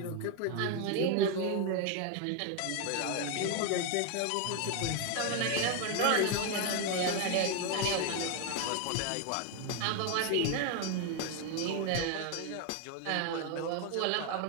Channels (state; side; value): different; both; correlation 0.01